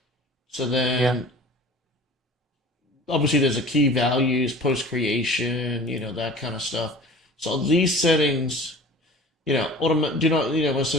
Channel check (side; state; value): both; normal; correlation 0.42